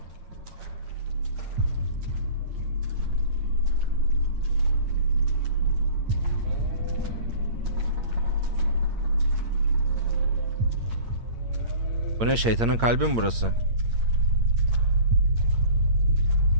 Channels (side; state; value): left; late; 8.7 ms